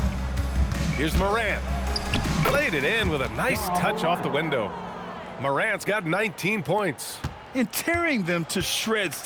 Here's Morant. Played it in with a nice touch off the window. Morant's got 19 points. And tearing them to shreds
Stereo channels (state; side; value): identical; both; correlation 1.00